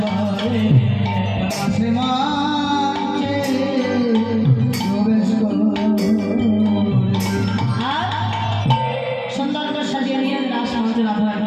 করে, রাসমঞ্চে প্রবেশ করে। আর সুন্দর করে সাজিয়ে নিয়ে রাসমঞ্চে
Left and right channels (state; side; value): identical; both; correlation 1.00